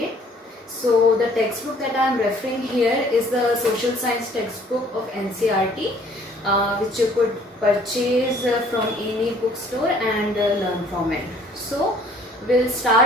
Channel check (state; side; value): normal; both; correlation 0.57